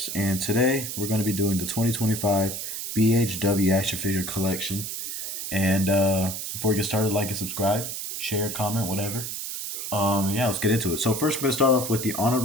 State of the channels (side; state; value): right; noise; hiss, 5 dB below the sound